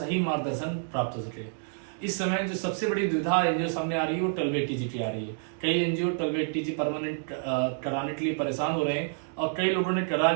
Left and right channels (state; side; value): silent; left; digital silence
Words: मार्गदर्शन प्राप्त हो सके। इस समय जो सबसे बड़ी दुविधा एनजीओ सामने आ रही है वो 12 टीजीटी आ रही है। कई एनजीओ 12 टीजी परमानेंट कराने के लिए परेशान हो रहे हैं और कई लोगों ने करा